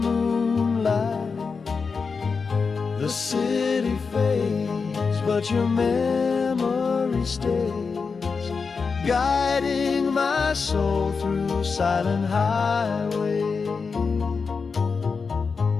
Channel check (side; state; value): right; quieter; 5.0 dB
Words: The city fades, but your memory stays, guiding my soul through silent highway.